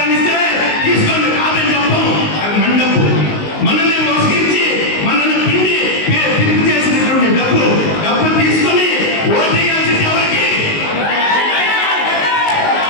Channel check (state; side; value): late; right; 19 ms